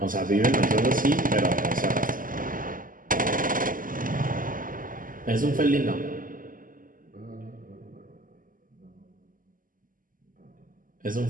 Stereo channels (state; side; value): late; left; 0.40 ms